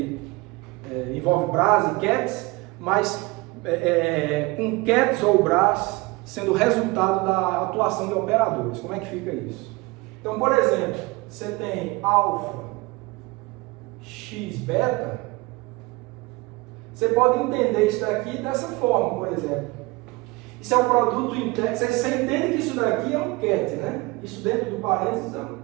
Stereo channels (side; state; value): left; quieter; 23.4 dB